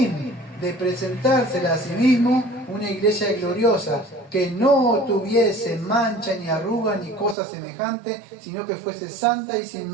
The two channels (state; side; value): drops out; left; at 7.4 s